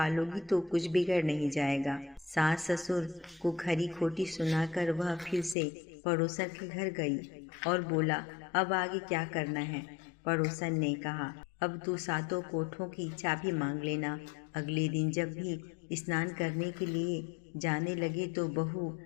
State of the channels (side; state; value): right; drops out; at 5.6 s